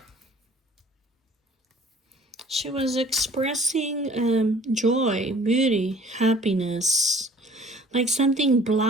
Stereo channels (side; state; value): both; normal; correlation 0.51